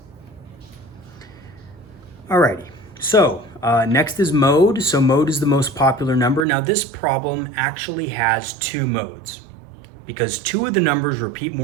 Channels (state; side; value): drops out; left; at 6.5 s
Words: Alrighty, so next is mode. So mode is the most popular number. Now this problem actually has 2 modes because 2 of the numbers repeat